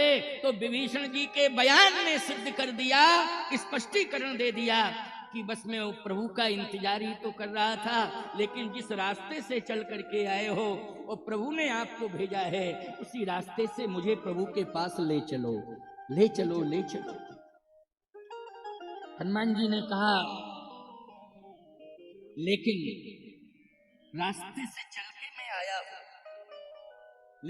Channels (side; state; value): both; identical; correlation 1.00